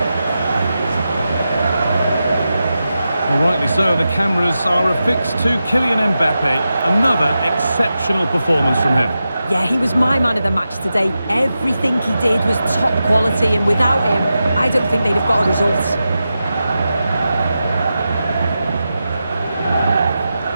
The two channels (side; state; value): both; inverted; correlation -0.91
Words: Well, rightly so, the cameras are affixed to Kylian Mbappé. Another exceptional performance from him. Yeah, he was my man of the match today. Everything he did was top quality, and without him, I don't think they'd have got a result.